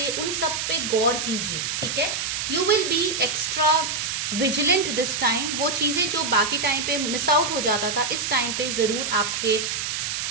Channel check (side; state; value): right; noise; hiss, 2 dB below the sound